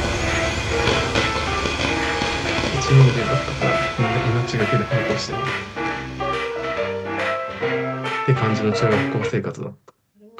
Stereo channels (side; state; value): both; identical; correlation 1.00